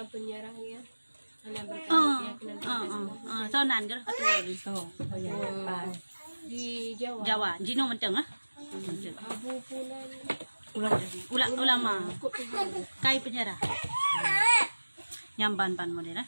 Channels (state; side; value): inverted; both; correlation -1.00